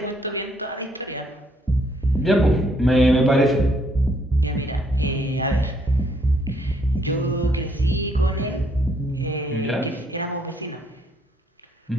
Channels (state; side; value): normal; both; correlation 0.69